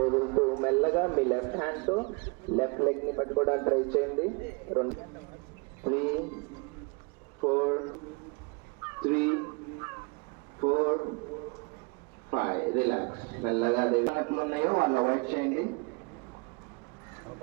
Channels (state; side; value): quieter; left; 31.5 dB